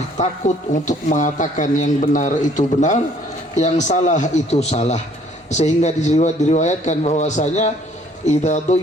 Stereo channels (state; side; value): normal; both; correlation 0.60